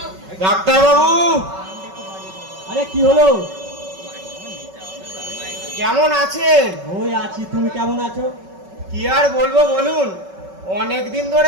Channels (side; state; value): left; late; 5.3 ms